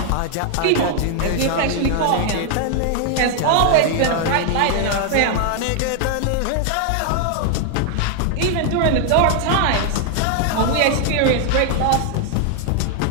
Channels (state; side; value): different; both; correlation 0.00